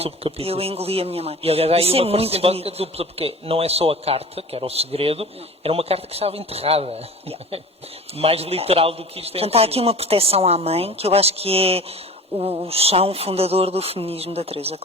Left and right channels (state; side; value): normal; both; correlation 0.39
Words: subcapítulos. Eu engoli a minha mãe. E aliás, há aí Isso é uma muito simbólica bonito. dupla, porque não é só a carta, que era o segredo, era uma carta que estava enterrada. Mais literal do que isto é. Portanto, há aqui uma proteção à mãe, que eu acho que é o chão fundador do feminismo da Teresa,